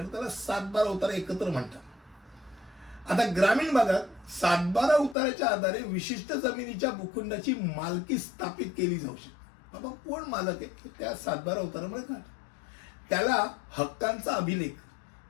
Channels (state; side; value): drops out; right; at 5.2 s